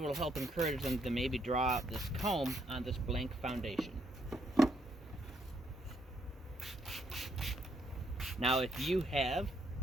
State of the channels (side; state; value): both; normal; correlation 0.74